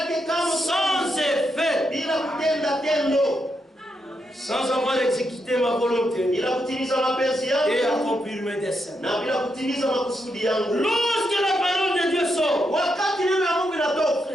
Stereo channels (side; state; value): both; normal; correlation 0.82